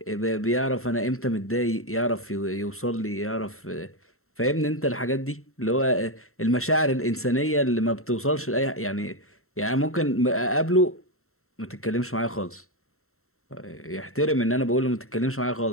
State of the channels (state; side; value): late; right; 0.63 ms